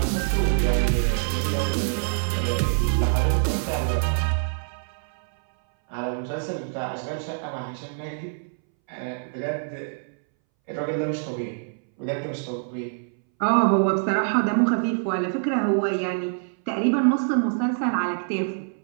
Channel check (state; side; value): silent; left; 62 dB below the other